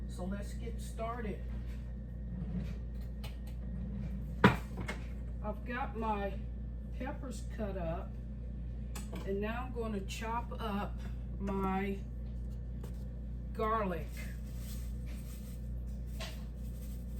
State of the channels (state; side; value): identical; both; correlation 1.00